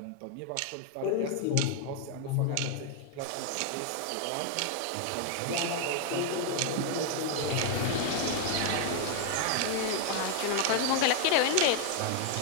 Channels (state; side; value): different; both; correlation 0.00